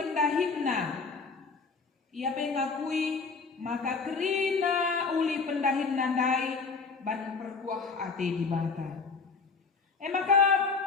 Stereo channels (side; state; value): right; quieter; 4.7 dB